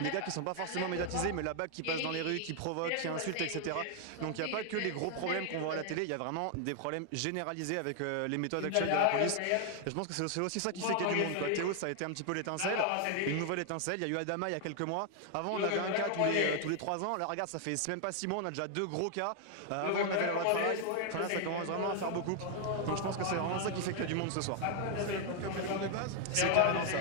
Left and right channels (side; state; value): both; different; correlation 0.00